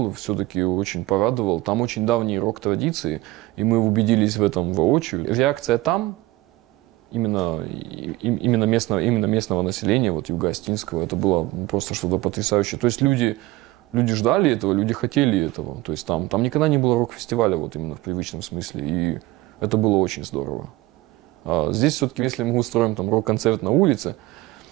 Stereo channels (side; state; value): left; quieter; 19.3 dB